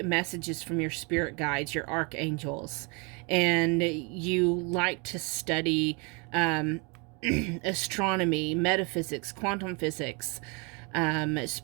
messages from your spirit guides, your archangels, and you like to study astronomy, metaphysics, quantum physics,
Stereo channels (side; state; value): left; quieter; 31.6 dB